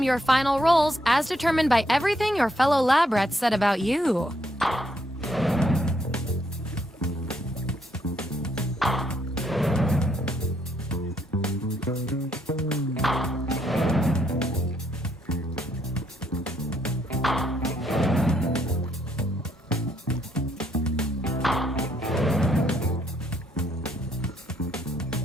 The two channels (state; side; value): normal; both; correlation 0.73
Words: your final roles as determined by everything your fellow lab rats said about you.